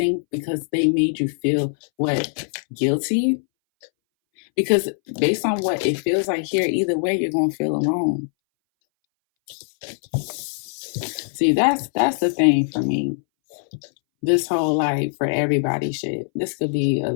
because they made you feel what? Guilty? Because based on what it feels like here, either way, you're going to feel alone. See, that's the thing for me. This whole like for everybody shit. This could be a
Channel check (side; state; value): right; silent; 62 dB below the other